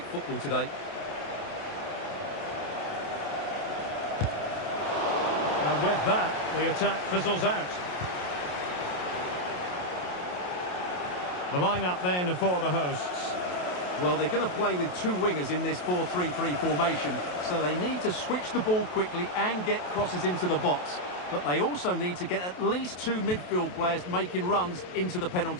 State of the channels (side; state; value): right; late; 28 ms